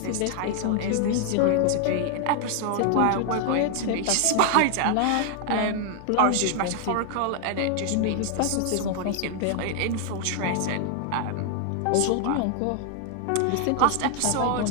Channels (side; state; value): both; different; correlation 0.00